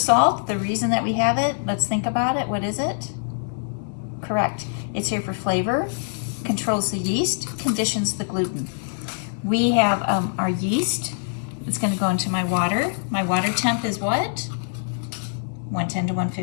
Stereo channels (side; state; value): right; silent; 57 dB below the other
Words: the reason that we have it, let's think about it, what is it? Correct, it's here for flavor, controls the yeast, conditions the gluten. We have our yeast. It's going to go into my water. My water temp is what? 110 to